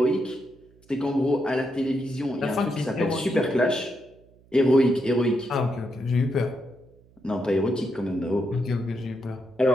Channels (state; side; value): noise; right; hum, 29 dB below the sound